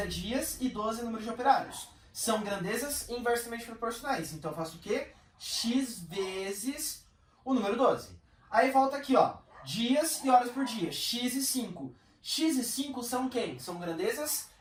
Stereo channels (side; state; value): both; identical; correlation 1.00